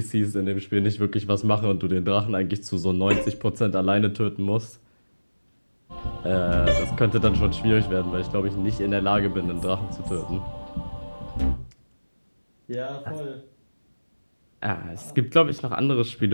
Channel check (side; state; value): both; inverted; correlation -1.00